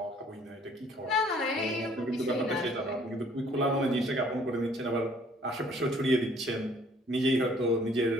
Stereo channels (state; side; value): normal; both; correlation 0.59